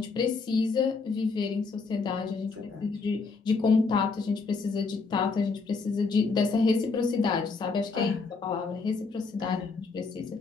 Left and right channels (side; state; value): right; quieter; 4.4 dB